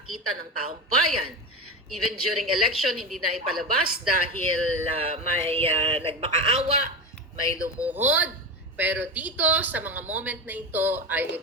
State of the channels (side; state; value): both; normal; correlation 0.21